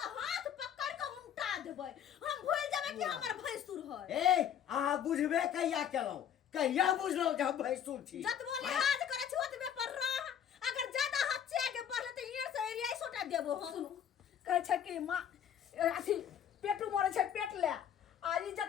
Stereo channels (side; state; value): right; quieter; 9.0 dB